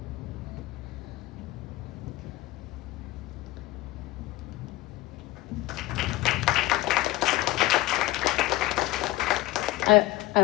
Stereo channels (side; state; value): right; quieter; 17.6 dB